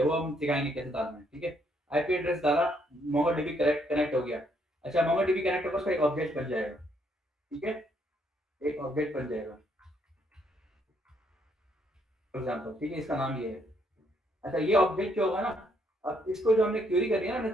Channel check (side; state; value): both; normal; correlation 0.71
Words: वो हम सिखाएंगे कैसे डालना है, ठीक है? आईपी एड्रेस डाला, मोंगोडीबी कनेक्ट हो गया। अच्छा, मोंगोडीबी कनेक्ट होगा, उसका एक ऑब्जेक्ट बन जाएगा, ठीक है? एक ऑब्जेक्ट बन जाएगा फॉर एग्जांपल, ठीक है? इसका नाम ये है। अच्छा, ये ऑब्जेक्ट क्या होगा ना, अब इसको जो हमने क्वेरी करी है ना, हमने